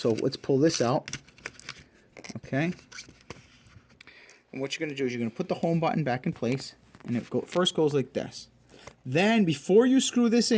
let's pull this out. Okay. And what you're going to do is you're going to put the home button back in place. And it first goes like this. Then before you screw this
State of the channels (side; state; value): both; identical; correlation 1.00